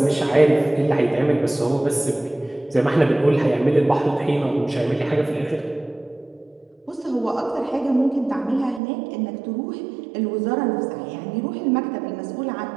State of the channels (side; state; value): left; drops out; at 8.8 s